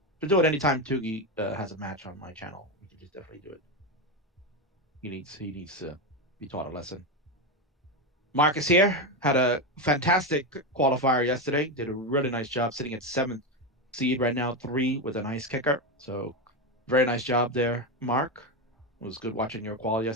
Should do it anytime Tugi has a match on my channel. We can just definitely do it. He needs to be taught a lesson. Marcus here had a fantastic qualifier yesterday. Did a really nice job sitting at 7th seed right now, 3 with a nice kicker. So very nice job there, Mark. It was good watching your qual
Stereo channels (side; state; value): both; normal; correlation 0.12